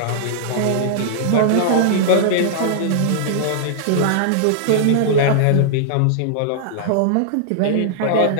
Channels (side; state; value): both; different; correlation -0.01